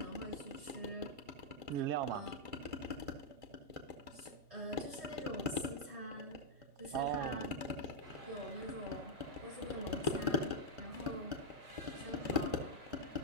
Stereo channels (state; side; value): late; left; 1.5 ms